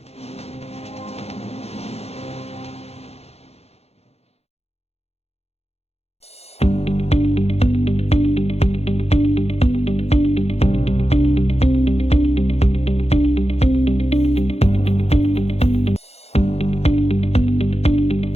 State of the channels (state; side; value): late; right; 0.30 ms